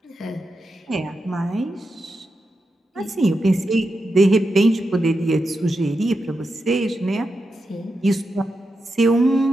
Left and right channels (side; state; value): both; normal; correlation 0.88